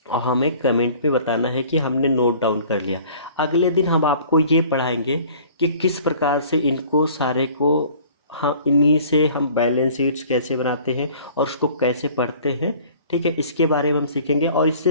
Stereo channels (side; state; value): both; inverted; correlation -0.50